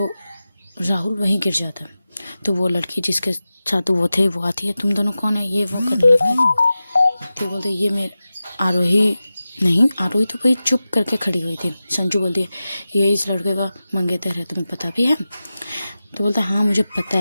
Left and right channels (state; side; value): inverted; both; correlation -0.94